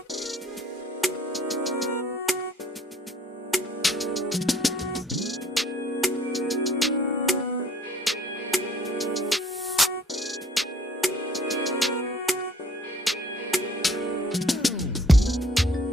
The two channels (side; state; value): both; normal; correlation 0.57